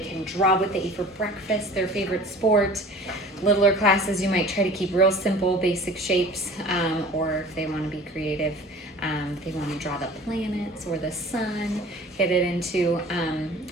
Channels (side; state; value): both; normal; correlation 0.43